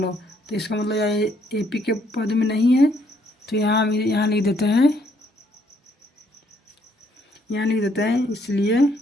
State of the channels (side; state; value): both; normal; correlation 0.69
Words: तो इसका मतलब यह AP के पद में नहीं है। तो यहाँ लिख देते हैं, इसलिए